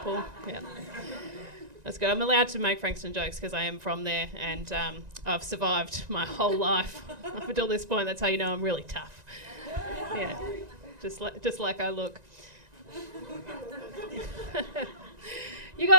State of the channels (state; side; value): late; left; 1.9 ms